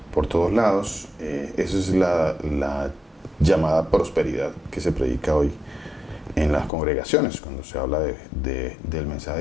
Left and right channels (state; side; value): drops out; right; at 6.7 s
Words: por todos lados. Esa es la llamada prosperidad que se predica hoy en las congregaciones cuando se habla del mensaje